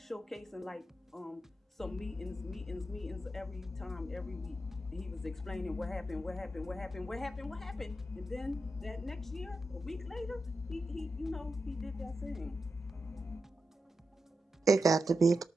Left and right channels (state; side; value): normal; both; correlation 0.88